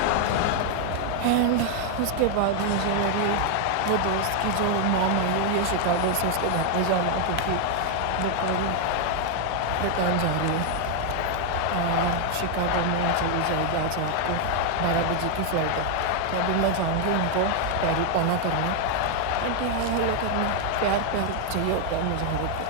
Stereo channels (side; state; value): both; different; correlation 0.00